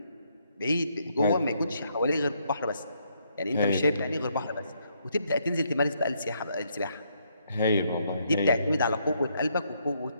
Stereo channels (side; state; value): both; inverted; correlation -0.74